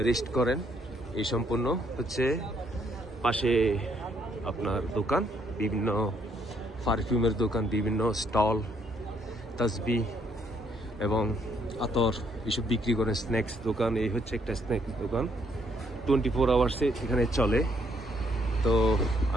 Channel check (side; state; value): both; normal; correlation 0.70